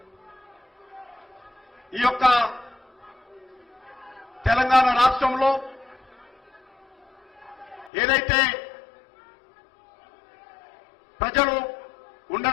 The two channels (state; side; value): drops out; right; at 7.9 s